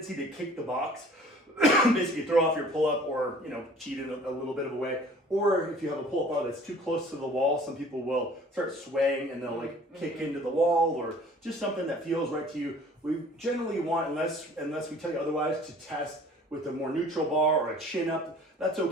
to kick the box. Basically throw off your pull-up or cheat in a little bit of a way. Or if you have a pull-up bar that's too close to the wall, some people will start swaying and they'll like kick into the wall, or just something that feels right to you. We generally want, unless we tell you otherwise, to test with a more neutral bar or a chin up. That's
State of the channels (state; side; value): normal; both; correlation 0.50